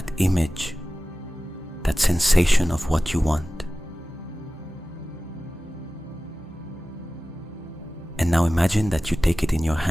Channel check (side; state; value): both; normal; correlation 0.96